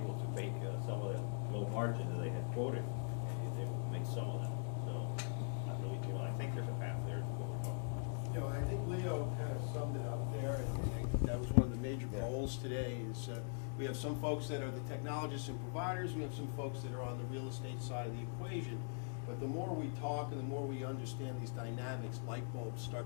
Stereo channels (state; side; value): silent; right; digital silence